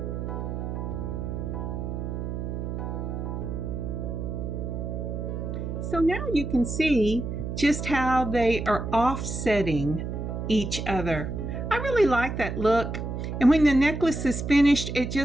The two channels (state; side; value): noise; right; hum, 4 dB below the sound